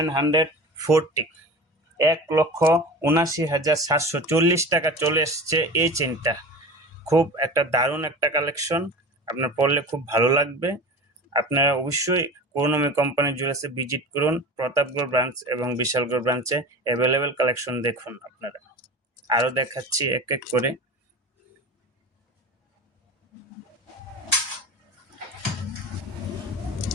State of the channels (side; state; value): both; normal; correlation 0.33